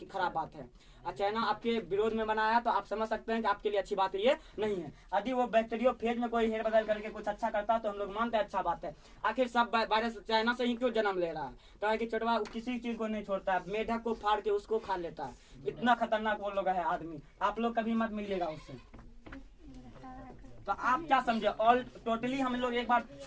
खराब बात है। चाइना आपके विरोध में बनाया तो आप समझ सकते हैं कि आपके लिए अच्छी बात ये नहीं है। यदि वो बैक्टीरियोफेज में कोई हेर बदल करके कुछ अच्छा करता तो हम लोग मानते हैं अच्छा बात है। आखिर सब वायरस चाइना से ही क्यों जन्म ले रहा है? तो है कि छोटवा किसी चीज को नहीं छोड़ता है, मेढक को फाड़ के उसको खा लेता है। इतना खतरनाक वो लोग है आदमी। आप लोग कभी मत मिलिएगा उससे। तो आप क्या समझे? ऑल टोटली हम लोग एक बार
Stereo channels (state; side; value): identical; both; correlation 1.00